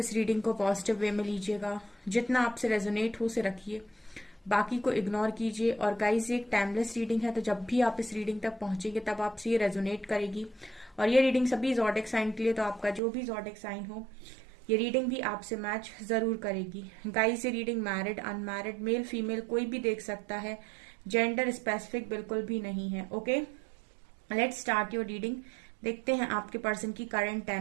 रीडिंग को पॉजिटिव वे में लीजिएगा। जितना आपसे रेजोनेट हो उसे रखिए, बाकी को इग्नोर कीजिए। और गाइस, ये एक टाइमलेस रीडिंग है, तो जब भी आप इस रीडिंग तक पहुंचेंगे तब आपसे ये रेजोनेट करेगी। और ये रीडिंग सभी ज़ोडिक साइन के लिए, तो आपका जो भी ज़ोडिक साइन हो ये रीडिंग भी आपसे मैच जरूर करेगी। गाइस, ये reading married, unmarried, male female कोई भी देख सकता है, जेंडर स्पेसिफिक बिल्कुल भी नहीं है। Okay, let's start your reading. देखते हैं आपके पर्सन की करंट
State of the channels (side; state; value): left; drops out; at 13.0 s